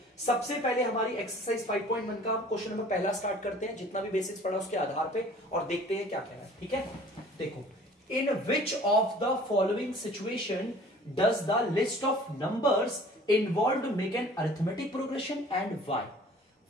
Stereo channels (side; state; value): both; normal; correlation 0.49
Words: सबसे पहले हमारी एक्सरसाइज 5.1 का क्वेश्चन नंबर पहला स्टार्ट करते हैं, जितना भी बेसिक्स पढ़ा उसके आधार पे, और देखते हैं क्या कह रहा है। ठीक है, देखो, in which of the following situation does the list of numbers involve make an arithmetic progression and why.